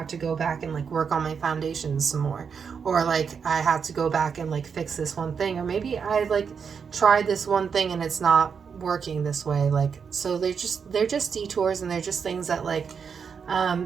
to go back and like work on my foundations some more, or like I have to go back and like fix this one thing, or maybe I like tried this one thing and it's not working this way. Like, so they're just detours, and they're just things that like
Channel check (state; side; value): quieter; left; 6.4 dB